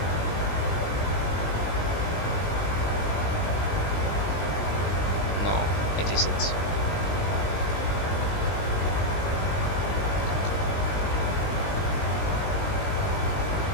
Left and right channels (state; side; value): late; right; 19 ms